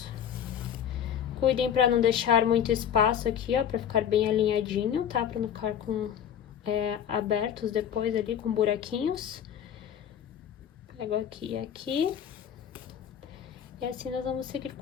Cuidem pra não deixar muito espaço aqui, ó, pra ficar bem alinhadinho, tá? Pra não ficar com abertos depois ali, com buraquinhos. Pego aqui e aqui. E assim nós vamos seguir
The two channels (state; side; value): quieter; right; 8.9 dB